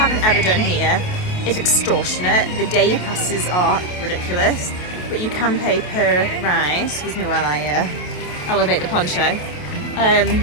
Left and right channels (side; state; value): right; late; 28 ms